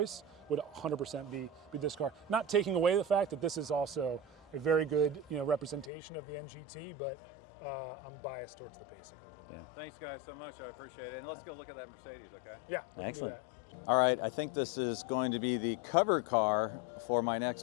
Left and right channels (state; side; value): drops out; right; at 5.9 s